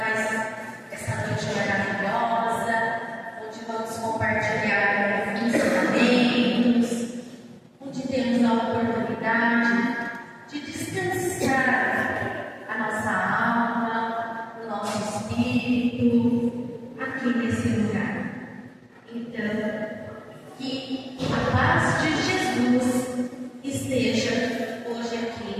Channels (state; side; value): identical; both; correlation 1.00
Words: essa noite maravilhosa, onde vamos compartilhar ensinamentos, onde temos a oportunidade de descansar a nossa alma, o nosso espírito, aqui nesse lugar. Então, que a paz de Jesus esteja hoje aqui